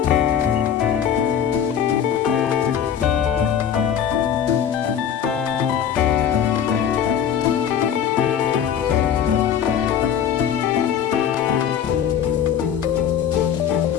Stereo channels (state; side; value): quieter; right; 8.8 dB